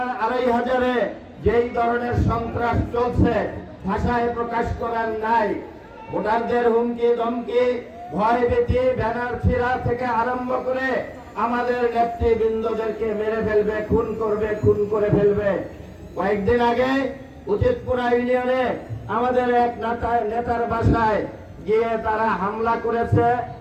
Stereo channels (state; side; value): identical; both; correlation 1.00